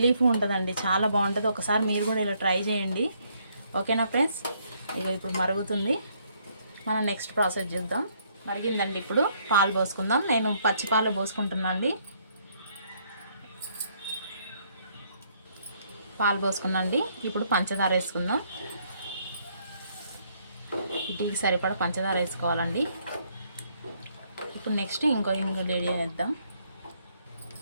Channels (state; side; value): inverted; both; correlation -0.69